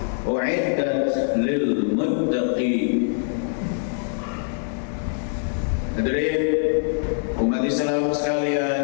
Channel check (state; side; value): silent; right; digital silence